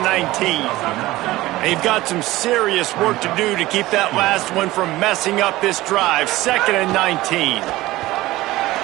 They've got some serious work to do to keep that last one from messing up this drive. 2nd and 19.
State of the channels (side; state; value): left; quieter; 17.7 dB